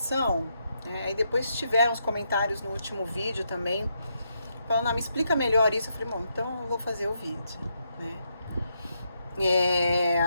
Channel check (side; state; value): both; inverted; correlation -0.80